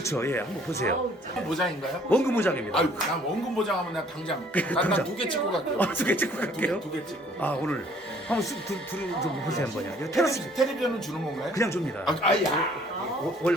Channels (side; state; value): both; normal; correlation 0.58